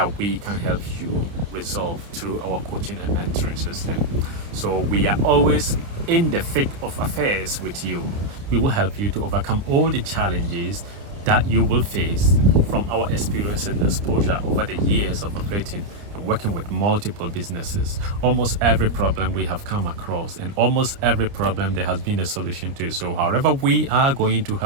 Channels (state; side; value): late; left; 29 ms